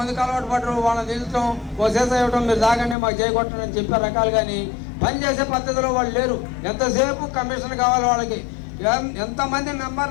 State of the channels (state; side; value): drops out; right; at 3.0 s